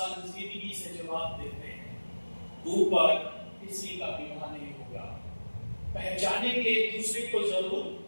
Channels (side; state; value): both; inverted; correlation -1.00